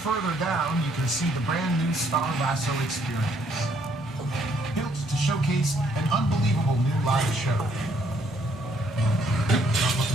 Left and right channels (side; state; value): both; normal; correlation 0.68